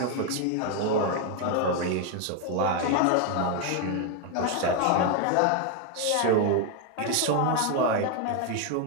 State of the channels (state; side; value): different; both; correlation 0.01